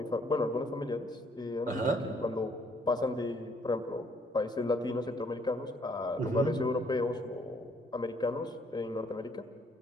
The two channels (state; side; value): normal; both; correlation 0.66